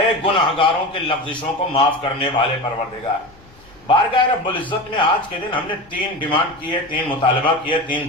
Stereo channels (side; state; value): left; noise; rumble, 26 dB below the sound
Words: گناہگاروں کے لغزشوں کو معاف کرنے والے پروردگار، بارگاہ رب العزت میں آج کے دن ہم نے 3 ڈیمانڈ کی ہے، 3 مطالبہ کیا ہے، 3